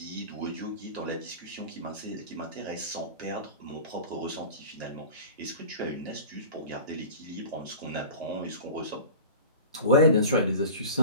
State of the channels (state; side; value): inverted; both; correlation -0.38